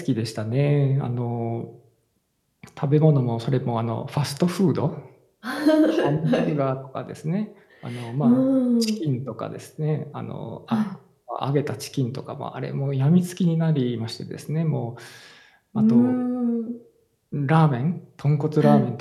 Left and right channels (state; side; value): identical; both; correlation 1.00